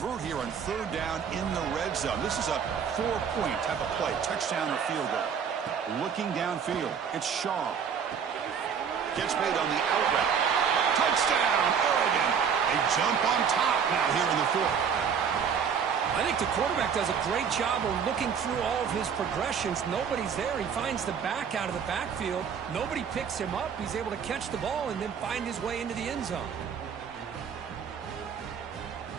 here on 3rd down in the red zone. This is a 4-point type of play, touchdown or field goal. Looking downfield, it's Shaw. Gets made on the out route. Touchdown, Oregon. A jump on top now here in the fourth. I think the quarterback does a great job of looking through all of his progressions. Nobody's there. He finds the back out of the backfield. Nobody picks him up. He's able to catch the ball and then find his way into the end zone.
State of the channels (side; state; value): left; quieter; 7.1 dB